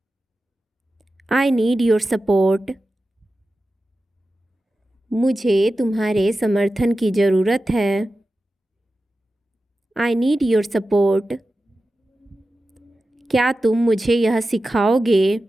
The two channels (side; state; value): both; normal; correlation 0.93